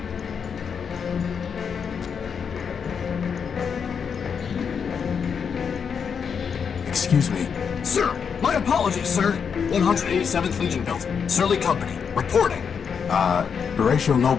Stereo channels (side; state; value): right; quieter; 6.6 dB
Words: Excuse me. Sir, my apologies, sir. 187th Legion built. Surly Company, reporting. Horatio